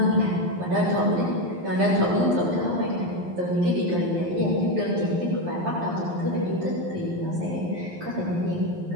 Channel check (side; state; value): left; late; 11 ms